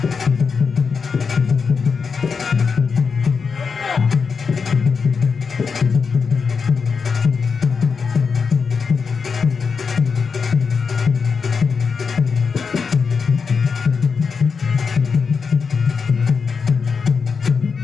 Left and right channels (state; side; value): quieter; right; 5.5 dB